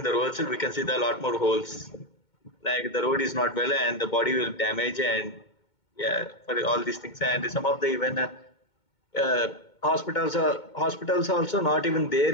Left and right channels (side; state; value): right; late; 2.2 ms